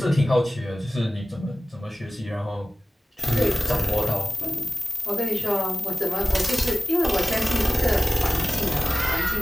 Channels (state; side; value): normal; both; correlation 0.96